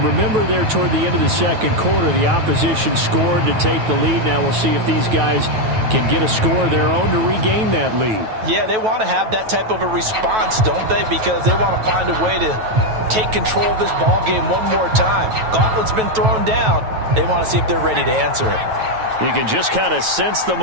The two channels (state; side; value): late; left; 9.2 ms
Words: Remember there toward the end of the second quarter, the opposition scored to take the lead. Now we'll see if these guys can get a score of their own to regain that lead. Yeah, they want to have that type of a response, don't they? Because they want to find a way to take control of this ball game one more time. Gauntlet's been thrown down. They want to see if they're ready to answer it. You can just kind of sense the